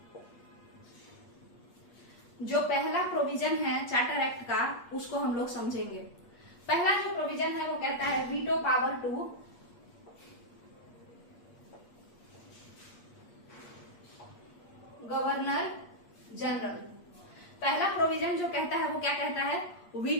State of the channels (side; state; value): right; late; 8.5 ms